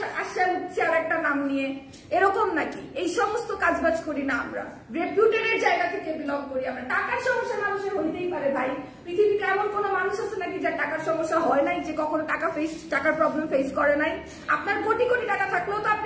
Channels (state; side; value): identical; both; correlation 1.00